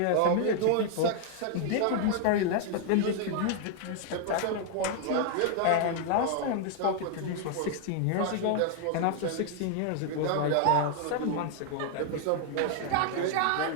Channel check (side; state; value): both; different; correlation 0.00